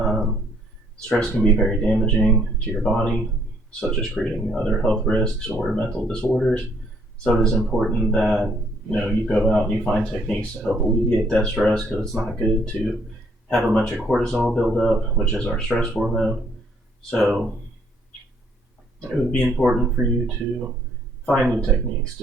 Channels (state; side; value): normal; both; correlation 0.67